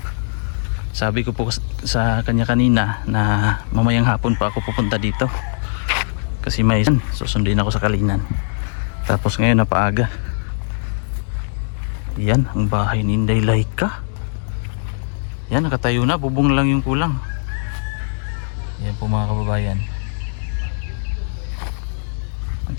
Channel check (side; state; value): right; silent; 64 dB below the other